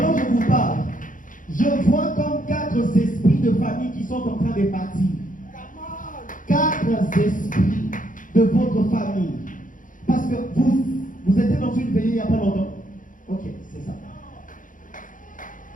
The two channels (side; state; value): right; late; 0.38 ms